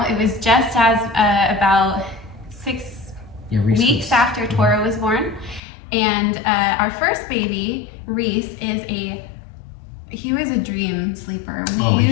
It was just as about 6 weeks after Tora was born. And our first baby, Reese, he was a dream sleeper. We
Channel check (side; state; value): right; drops out; at 5.6 s